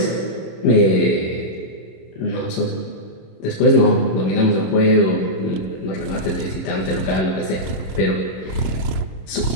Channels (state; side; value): late; right; 26 ms